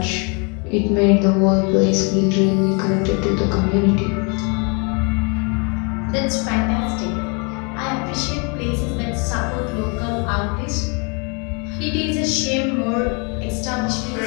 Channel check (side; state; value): right; quieter; 34.5 dB